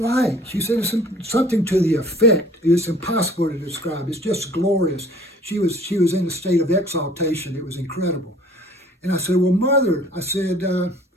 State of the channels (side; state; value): both; normal; correlation 0.52